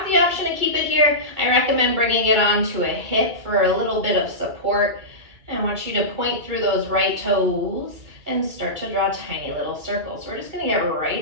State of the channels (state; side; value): late; left; 2.3 ms